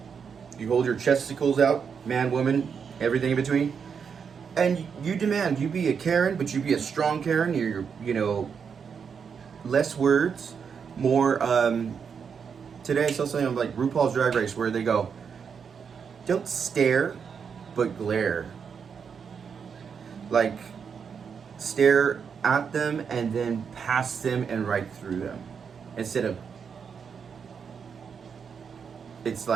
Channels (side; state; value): left; quieter; 6.5 dB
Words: You hold your chesticles out, man, woman, everything in between. And you demand, you be a Karen, but you be a strong Karen. You're less words, more, today I saw something like RuPaul's Drag Race where they go, don't stare, but glare. Like, stare at them and then past them and right through them. Instead of, it's